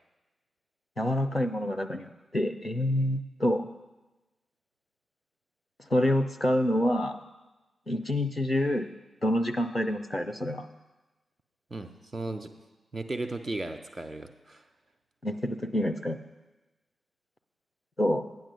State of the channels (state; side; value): normal; both; correlation 0.86